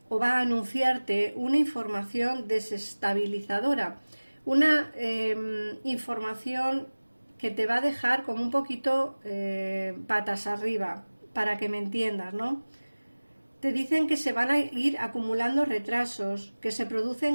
o va a anunciarte una información desestabilizadora, una información que te va a dejar como un poquito patas arriba, para que me entiendas, ¿no? Te dicen que se van a ir acumulando retrasos, que se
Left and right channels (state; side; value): inverted; both; correlation -1.00